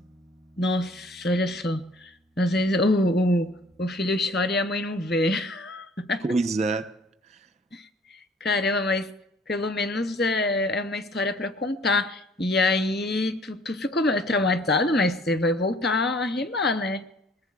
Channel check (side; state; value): both; normal; correlation 0.55